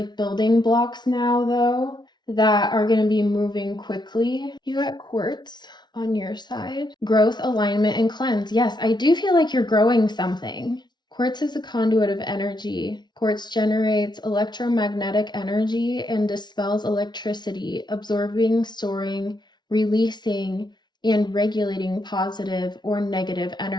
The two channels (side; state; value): right; late; 0.20 ms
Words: building blocks now, though, that are going to be moving quickly. You got quartz on your side. Growth, alignment, and cleanse. Yes, I do feel like you're growing something. Quartz is a conduit of energy. Quartz generates electromagnetic energy and dispels electricity, absorbing, storing, releasing, and regulating positive or negative